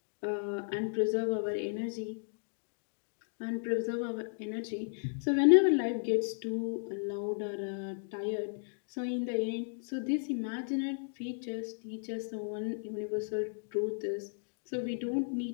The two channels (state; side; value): silent; right; digital silence